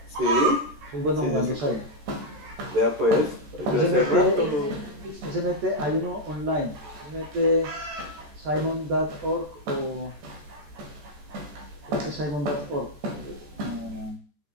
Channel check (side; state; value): left; late; 14 ms